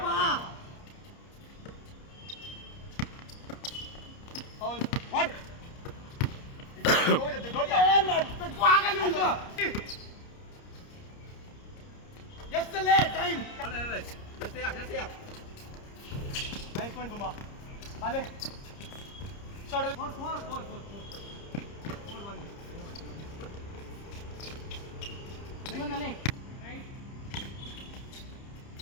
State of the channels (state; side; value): late; right; 30 ms